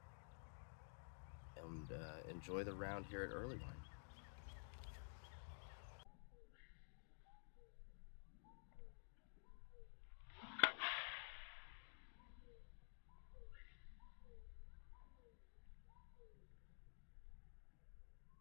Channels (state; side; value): silent; right; digital silence